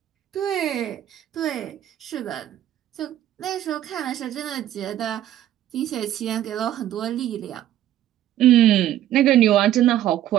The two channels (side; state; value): left; quieter; 12.4 dB